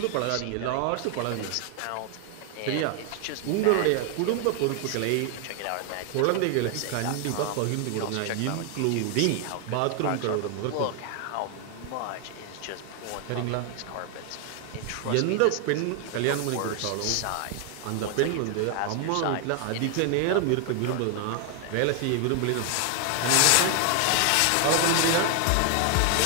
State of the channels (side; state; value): both; different; correlation 0.00